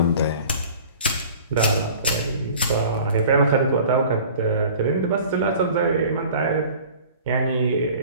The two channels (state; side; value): inverted; both; correlation -0.45